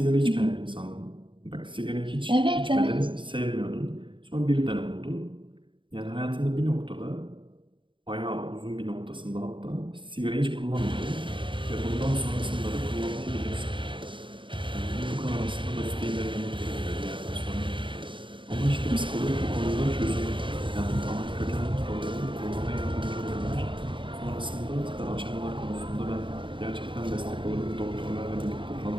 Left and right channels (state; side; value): late; left; 0.24 ms